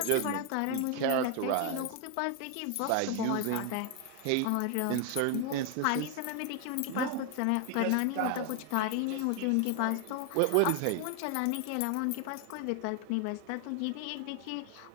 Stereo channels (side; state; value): both; different; correlation 0.00